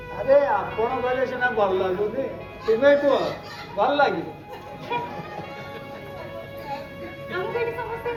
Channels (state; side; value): identical; both; correlation 1.00